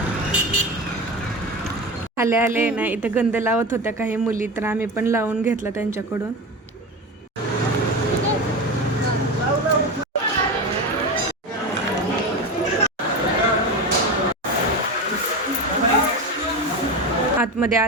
आले ना इथं गंध लावत होत्या काही मुली, तर आम्ही पण लावून घेतला त्यांच्याकडून. आतमध्ये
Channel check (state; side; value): normal; both; correlation 0.23